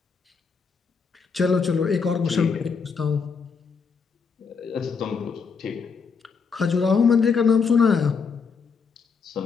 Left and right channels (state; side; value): quieter; right; 5.5 dB